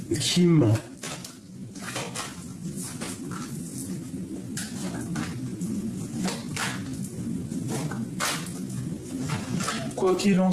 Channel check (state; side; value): identical; both; correlation 1.00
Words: ment. Quoi qu'il en